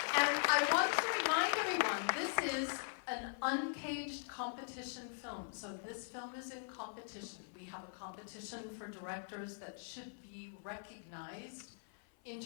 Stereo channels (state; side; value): silent; right; 50 dB below the other